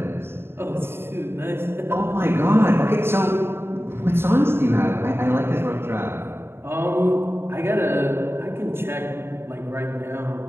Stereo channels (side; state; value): left; late; 0.11 ms